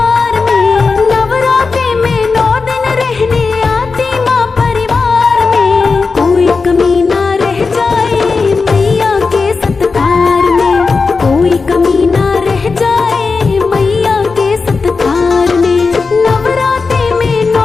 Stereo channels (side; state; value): right; quieter; 4.5 dB